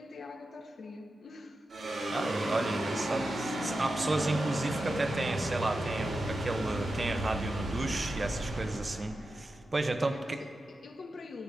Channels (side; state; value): both; normal; correlation 0.91